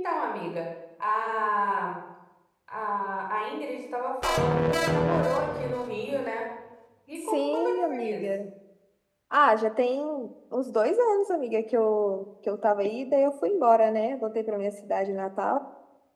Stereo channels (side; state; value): both; identical; correlation 1.00